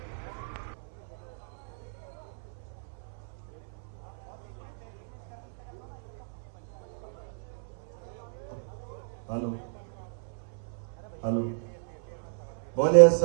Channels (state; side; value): silent; left; 56 dB below the other